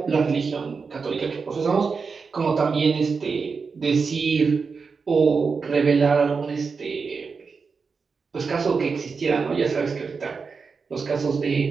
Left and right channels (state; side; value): quieter; left; 5.1 dB